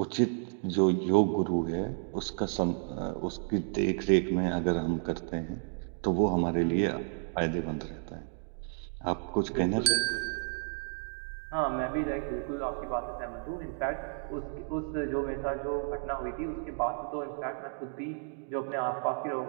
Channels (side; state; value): left; silent; 56 dB below the other